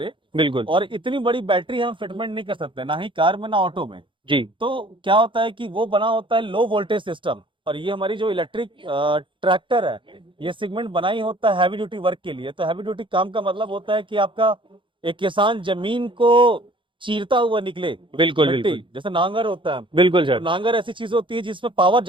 बिल्कुल। और इतनी बड़ी बैटरी हम फिटमेंट नहीं कर सकते, ना ही कार में ना ऑटो में। जी तो क्या होता है कि वो बना होता है लो वोल्टेज सिस्टम। और ये हमारी जो इलेक्ट्रिक ट्रैक्टर है, ये सेगमेंट बना ही होता है हैवी ड्यूटी वर्क के लिए। तो हैवी ड्यूटी काम का मतलब होता है कि आपका एक किसान जमीन को चीरता हुआ निकले। बिल्कुल मिट्टी बिल्कुल। जैसे नांगर होता है, बिल्कुल तो सर। नांगर ऐसी चीज होती है जिसमें पावर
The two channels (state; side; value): late; left; 0.24 ms